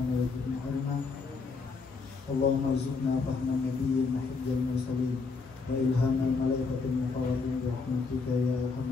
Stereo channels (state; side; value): quieter; right; 4.5 dB